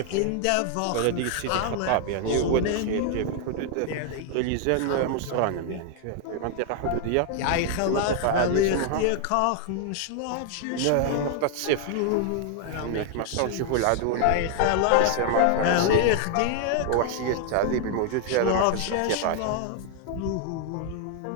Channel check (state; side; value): different; both; correlation 0.00